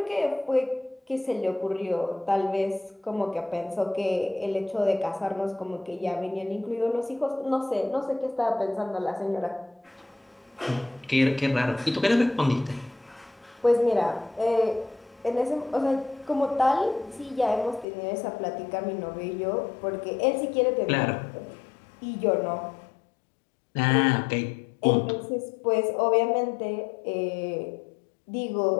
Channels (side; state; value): right; drops out; at 17.9 s